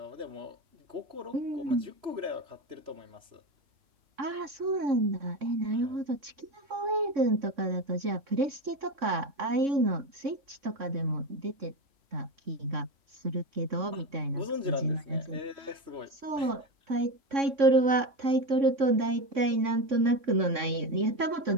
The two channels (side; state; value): left; late; 3.6 ms